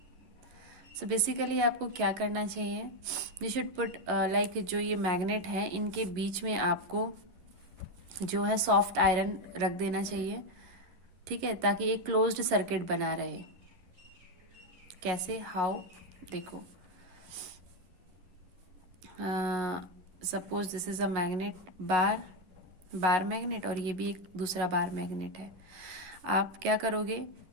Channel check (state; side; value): late; left; 11 ms